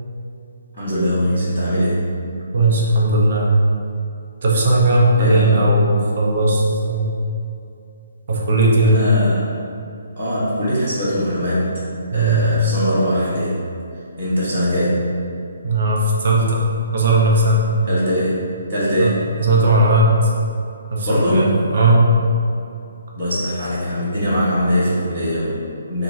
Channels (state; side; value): inverted; both; correlation -0.54